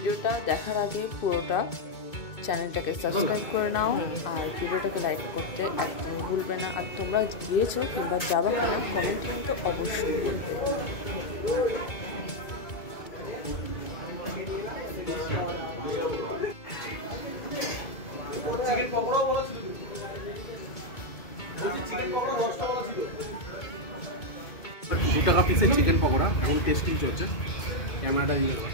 দেখার আগে পুরোটা চ্যানেলটাকে সাবস্ক্রাইব করে নাও আর ভিডিওটাকে লাইক করতে একদম ভুলবে না। আর তোমরা গিয়েছো কিংবা যাবা কিনা কমেন্টে কিন্তু অবশ্যই বলবে। চিকেন পকোড়াও বলা ছিল, চিকেন পকোড়া 10 টাকা ছিল। 2 টাকা পিসের চিকেন পকোড়া এখন টেস্টিং চলছে। ক্যামেরাটা দিয়ে দেবো,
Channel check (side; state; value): right; late; 2.2 ms